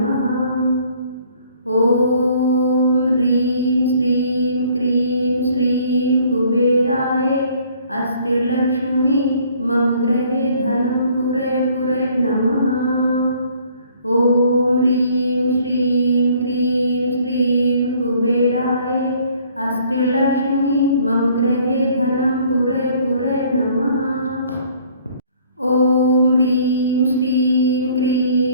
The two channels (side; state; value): both; inverted; correlation -0.59